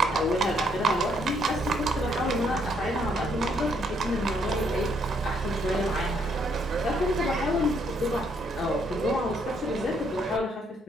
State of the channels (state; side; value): normal; both; correlation 0.70